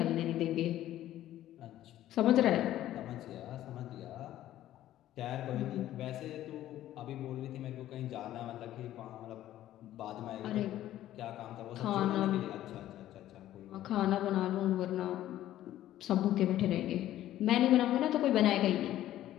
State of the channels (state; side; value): quieter; right; 13.3 dB